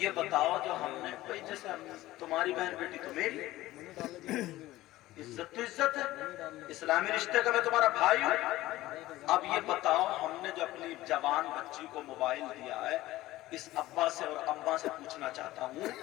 بتاؤ جو ہم نے، بھائی جیسے تمہاری بہن بیٹی تو میری، عزت تو عزت ہے، اسلامی رشتے کا میں تمہارا بھائی ہوں۔ اب یہ بتاؤ ہم نے جو اپنی جوان بچی کو موبائل دیا ہے، اس ابا سے اور اماں سے پوچھنا چاہتا ہوں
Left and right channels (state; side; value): quieter; right; 16.7 dB